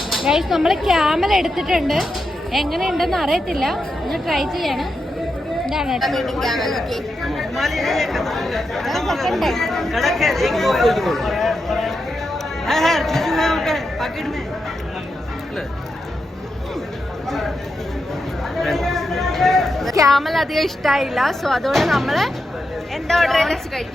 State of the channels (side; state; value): both; normal; correlation 0.86